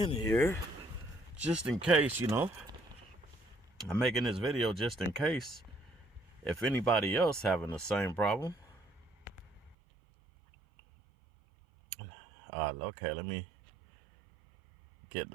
here just in case, you know. I'm making this video just in case if anybody else having the same problem. Okay, let me get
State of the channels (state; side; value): drops out; left; at 9.8 s